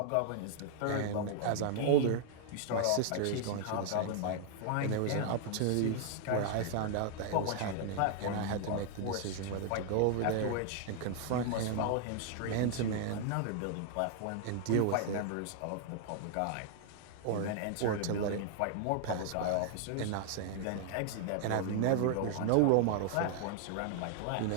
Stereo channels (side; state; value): both; different; correlation 0.00